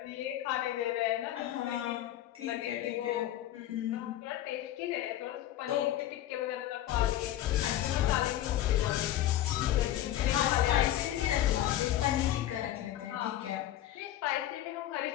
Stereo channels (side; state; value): right; quieter; 12.9 dB